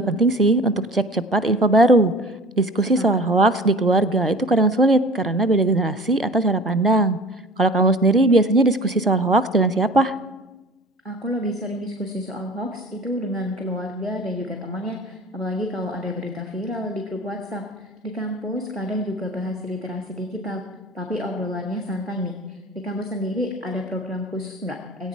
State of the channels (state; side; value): normal; both; correlation 0.43